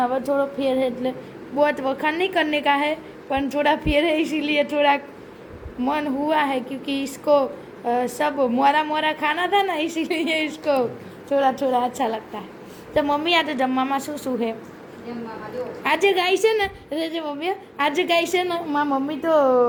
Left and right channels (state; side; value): identical; both; correlation 1.00